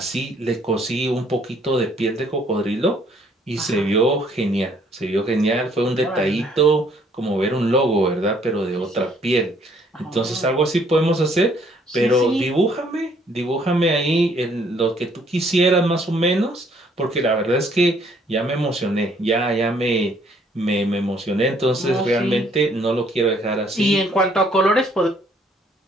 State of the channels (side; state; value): both; normal; correlation 0.64